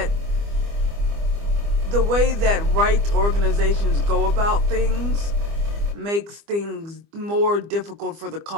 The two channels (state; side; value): late; left; 25 ms